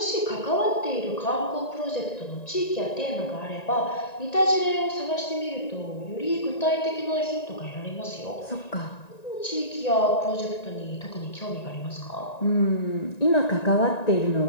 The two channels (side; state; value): right; late; 1.9 ms